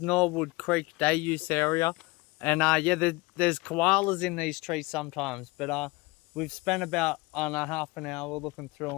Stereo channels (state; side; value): quieter; right; 23.7 dB